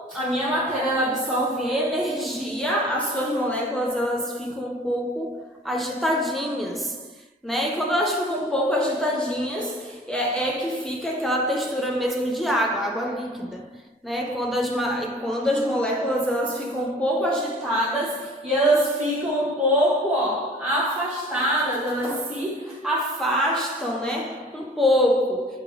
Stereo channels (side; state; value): both; normal; correlation 0.48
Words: a minha matéria ela absorve energia, as suas moléculas elas ficam um pouco agitadinhas, né? E quando elas ficam um pouco agitadinhas, é que fica aquela textura mesmo de água, água líquida, né? Quando as moléculas elas ficam um pouco agitadas e elas ficam um pouco, ó, afastadas, elas se afastam, né? Um pouco